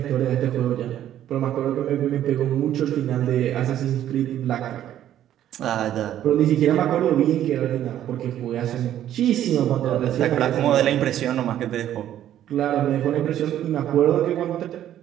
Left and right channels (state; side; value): quieter; left; 11.6 dB